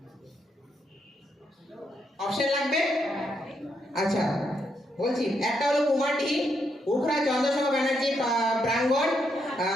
অপশন লাগবে? আচ্ছা বলছি, একটা হলো কুমারটি, উখরা চন্দ্রশেখর ব্যানার্জি প্রাঙ্গণ,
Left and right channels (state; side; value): normal; both; correlation 0.78